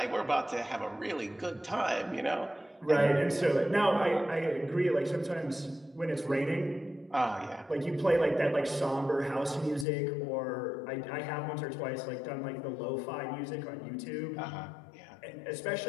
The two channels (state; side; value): drops out; right; at 9.9 s